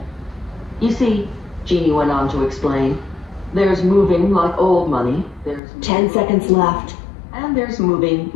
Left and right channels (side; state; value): right; drops out; at 5.6 s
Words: "You see," Jeannie went on to explain, "there's moving like old money, there's 10 seconds left. and there's moving